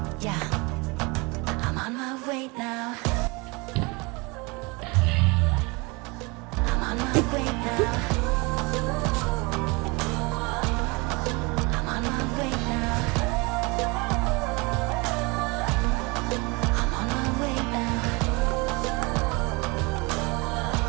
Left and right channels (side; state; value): left; quieter; 27.4 dB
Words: Yeah, I'm on my way now. I'm on my way now. I'm on my way now. I'm on my way now.